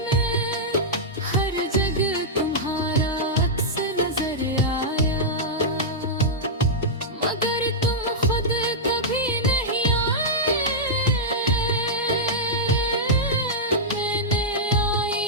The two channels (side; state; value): both; normal; correlation -0.09